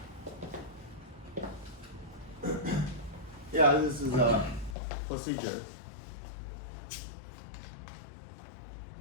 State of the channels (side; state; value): right; drops out; at 4.8 s